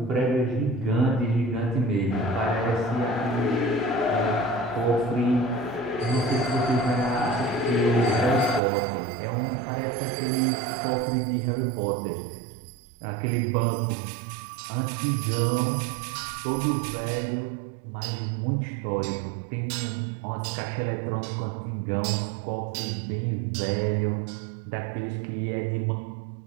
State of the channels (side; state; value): left; drops out; at 8.6 s